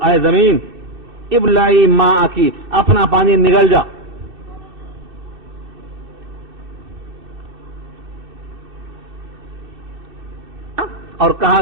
زمین، ابلعی ماء کی، اپنا پانی نگل جا. اور کہا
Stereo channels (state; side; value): late; left; 2.6 ms